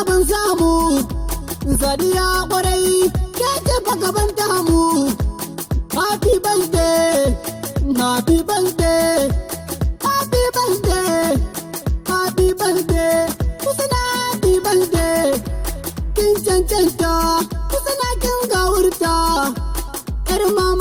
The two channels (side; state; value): both; identical; correlation 1.00